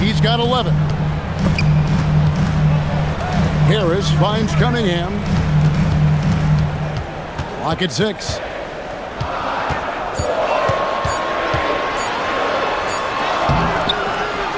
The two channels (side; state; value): both; identical; correlation 1.00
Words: He's got 11. Harris finds Cunningham. Clock at 6.